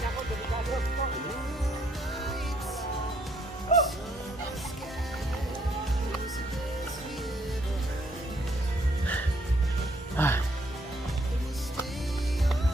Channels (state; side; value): normal; both; correlation 0.69